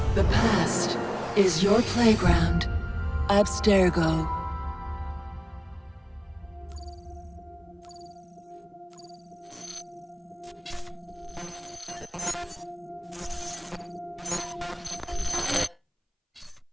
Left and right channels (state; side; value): identical; both; correlation 1.00